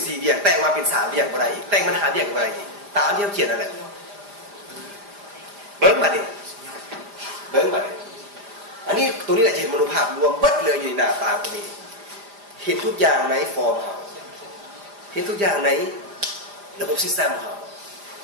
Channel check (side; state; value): left; late; 5.0 ms